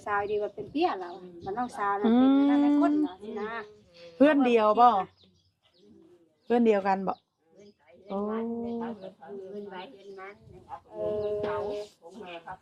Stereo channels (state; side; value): identical; both; correlation 1.00